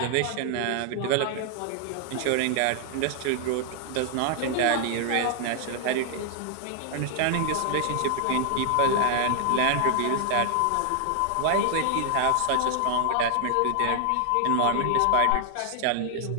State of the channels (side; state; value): both; different; correlation 0.00